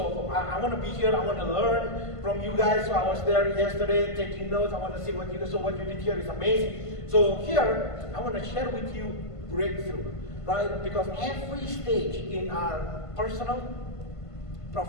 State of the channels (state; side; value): late; right; 1.5 ms